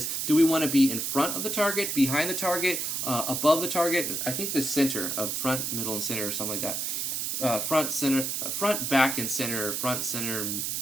do we want to be in front of the target, behind the target, above the target? I think the center, front, middle, and center, or something like that. Front, center, front, back, and center, front, center,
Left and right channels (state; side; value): noise; right; hiss, 1 dB below the sound